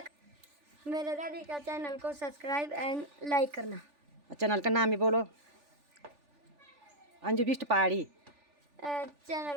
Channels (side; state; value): left; late; 3.4 ms